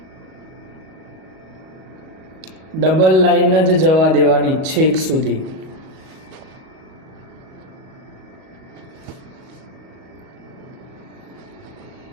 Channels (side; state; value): left; late; 38 ms